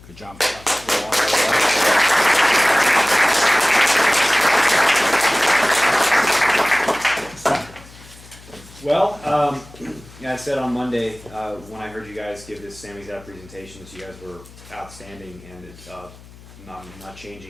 Good job. Well, yeah, I said on Monday, when I heard you guys give this same exact presentation, that you guys were outstanding, and it's not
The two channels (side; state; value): left; noise; hum, 21 dB below the sound